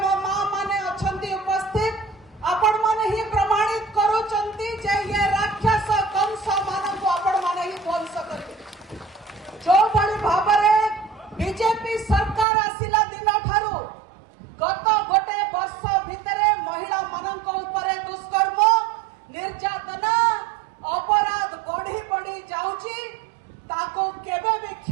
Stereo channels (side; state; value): left; drops out; at 12.5 s